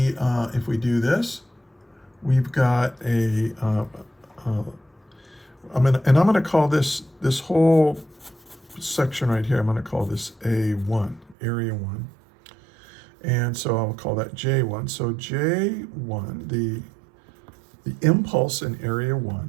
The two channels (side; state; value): left; drops out; at 11.4 s